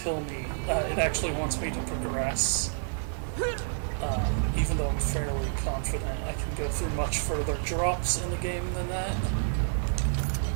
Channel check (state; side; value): silent; left; digital silence